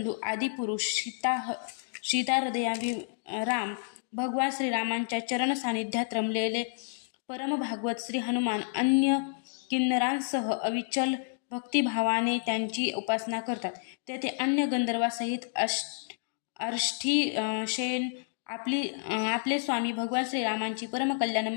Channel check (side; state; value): right; silent; digital silence